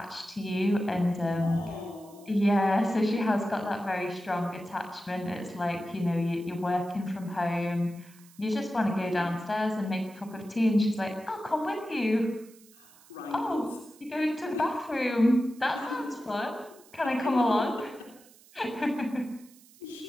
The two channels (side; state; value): right; noise; hiss, 25 dB below the sound